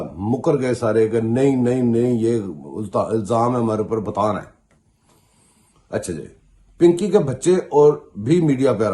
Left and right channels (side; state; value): both; identical; correlation 1.00